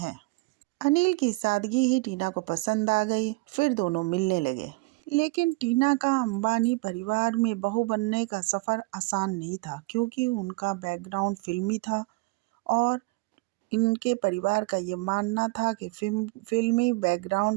अनिल की सादगी ही टीना को पसंद आ गई। फिर दोनों मिलने लगे। लेकिन टीना का अंबानी परिवार में बहू बनने का सफ़र आसान नहीं था, क्योंकि उनका बैकग्राउंड फिल्मी था और इनके परिवार का ये मानना था कि फिल्मी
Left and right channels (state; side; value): quieter; left; 23.7 dB